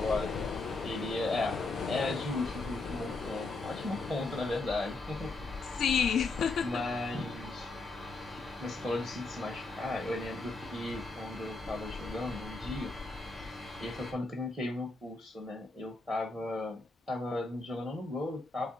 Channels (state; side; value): quieter; right; 3.3 dB